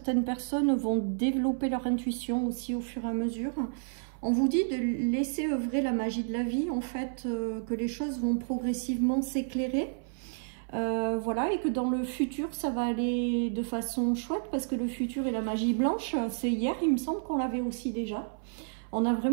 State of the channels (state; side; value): silent; left; 57 dB below the other